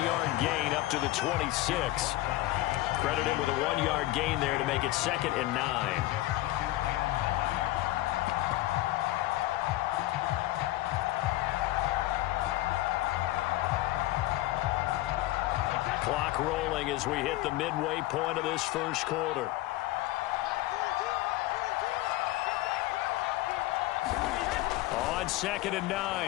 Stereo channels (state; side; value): quieter; right; 17.1 dB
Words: gain up to the 26. Credit him with a 1-yard gain there to make it 2nd and 9. Clock rolling as we hit the midway point of this first quarter. On 2nd and